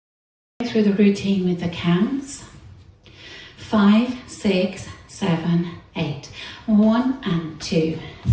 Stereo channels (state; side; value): identical; both; correlation 1.00